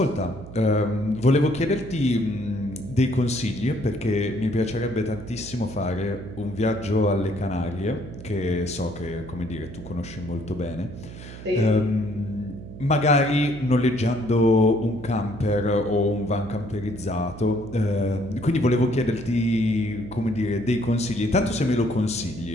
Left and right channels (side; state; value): right; noise; hum, 13 dB below the sound